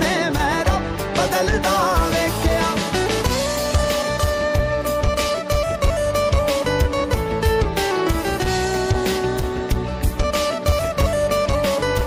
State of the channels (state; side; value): identical; both; correlation 1.00